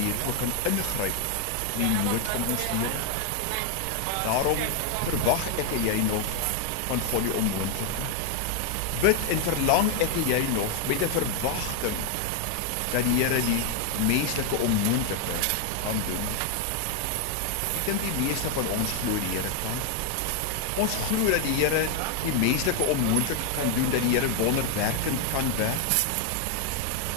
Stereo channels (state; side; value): different; both; correlation 0.00